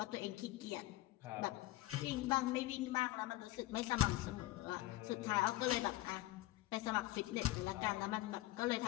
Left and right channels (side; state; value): right; quieter; 17.2 dB